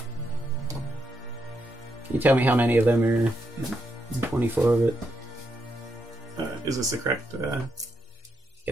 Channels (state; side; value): normal; both; correlation 0.80